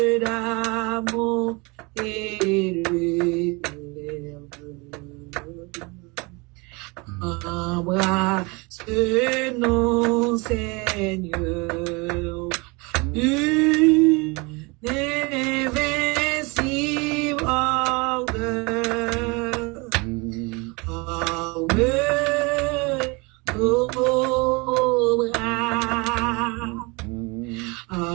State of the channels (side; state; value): left; quieter; 27.6 dB